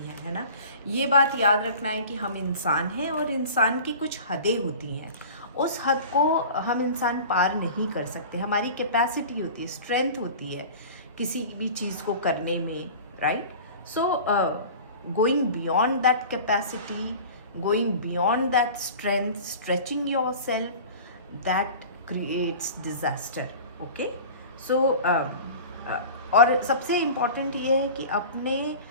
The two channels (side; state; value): both; inverted; correlation -0.38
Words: है ना। ये बात याद रखना है कि हम इंसान हैं और इंसान की कुछ हदें होती हैं, उस हद को हम इंसान पार नहीं कर सकते। हमारी कैपेसिटी होती है, स्ट्रेंथ होती है किसी भी चीज़ को करने में, right. So going beyond that capacity, going beyond that strength, stretching your self, that creates disaster, okay. So और सबसे इम्पॉर्टेंट ये है कि अपने